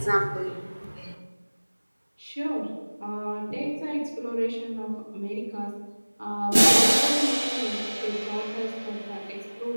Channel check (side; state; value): both; inverted; correlation -1.00